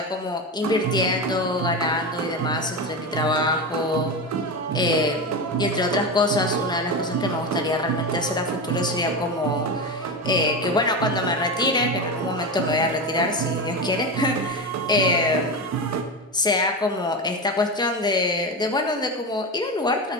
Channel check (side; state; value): both; normal; correlation 0.19